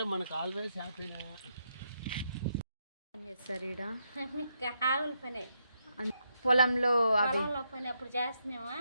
మనకు ఆల్వేస్ హ్యాపీనే. ఏం చేస్తారు ఈడ? ఆవుల పని, పొలంలో పని అప్పుడు చేస్తున్నామా,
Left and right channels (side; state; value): both; inverted; correlation -0.80